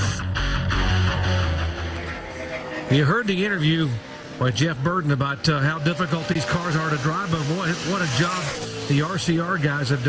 You heard the interview by Jeff Burton about how difficult these cars are to drive, but what a job the RCR guys have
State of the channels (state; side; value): identical; both; correlation 1.00